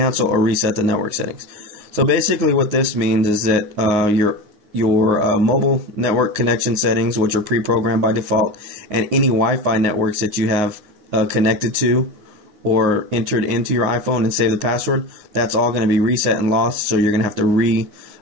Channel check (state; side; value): late; left; 9.8 ms